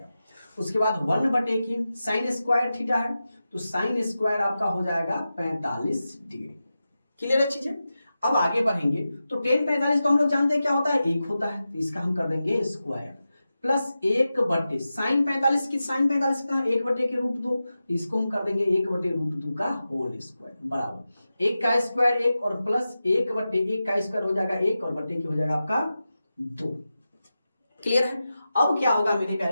उसके बाद 1/, साइन स्क्वायर थीटा है, तो साइन स्क्वायर आपका हो जाएगा 45 डिग्री। क्लियर है चीजें। अब आगे बढ़ेंगे तो tan 45 तो हम लोग जानते हैं क्या होता है, 1 होता है, तो इसका हम कर देंगे स्क्वायर प्लस 1/, साइन 45 की साइन 45 का 1/√2, इसको हम कर देंगे 1/√2 का होल स्क्वायर बराबर 1 का स्क्वायर 1 और प्लस 1/1 का स्क्वायर हो जाएगा 1 और बट्टे की हो जाएगा आपका 2। क्लियर है। अब क्या होगा मेरे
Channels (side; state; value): both; inverted; correlation -0.92